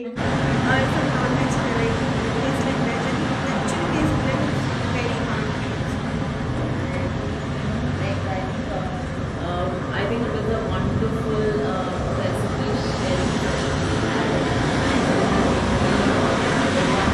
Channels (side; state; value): both; identical; correlation 1.00